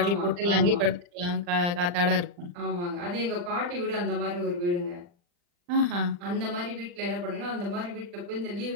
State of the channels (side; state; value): left; late; 40 ms